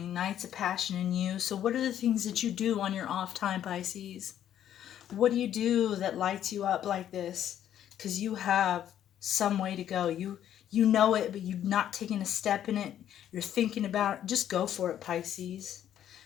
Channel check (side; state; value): right; quieter; 10.7 dB